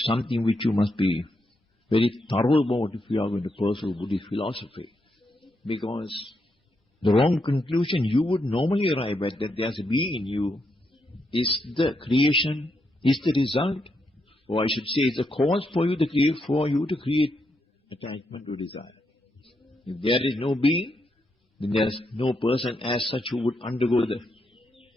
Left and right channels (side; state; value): both; normal; correlation 0.81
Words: something which you must be very thorough about if you are going to pursue Buddhist philosophy. Because the wrong conclusion you would normally arrive at, that there's a being in you, is the creation, is the result, or I should say is the cause for you to create attachment or desire. If there is no being, then there is no person as such who would undergo the